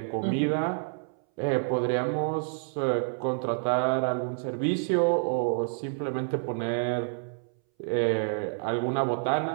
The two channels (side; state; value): left; silent; 59 dB below the other